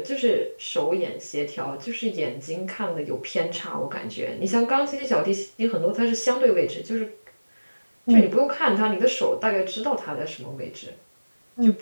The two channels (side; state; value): both; inverted; correlation -1.00